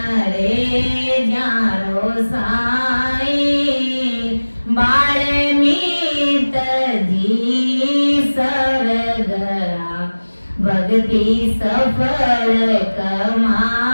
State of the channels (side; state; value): both; inverted; correlation -1.00